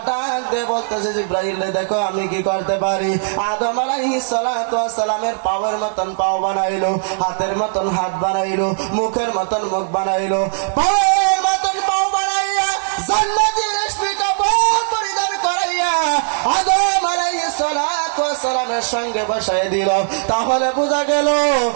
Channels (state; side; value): silent; left; digital silence